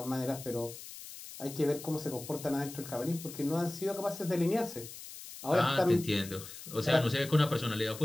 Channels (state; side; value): noise; left; hiss, 13 dB below the sound